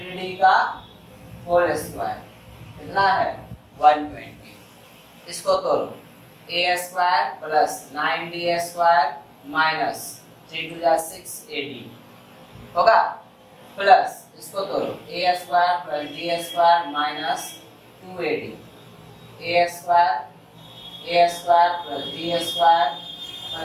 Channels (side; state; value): both; identical; correlation 1.00